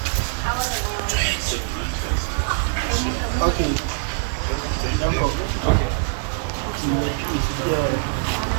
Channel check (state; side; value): silent; left; digital silence